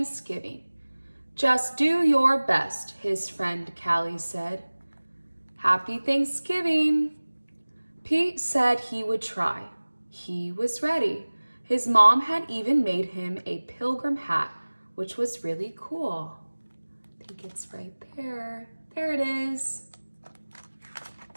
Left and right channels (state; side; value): inverted; both; correlation -1.00